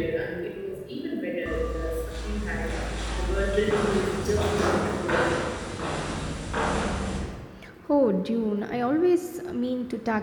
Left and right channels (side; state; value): both; identical; correlation 1.00